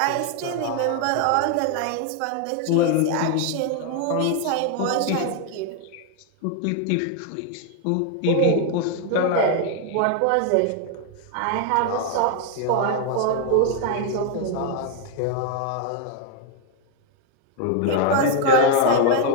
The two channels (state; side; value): different; both; correlation 0.00